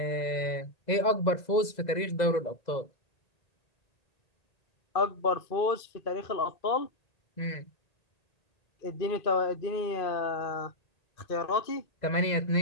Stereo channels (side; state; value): right; late; 2.0 ms